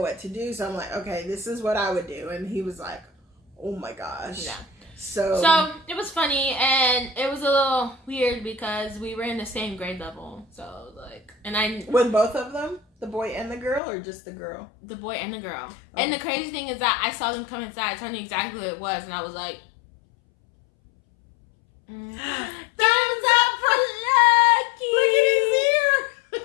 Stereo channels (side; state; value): right; drops out; at 13.8 s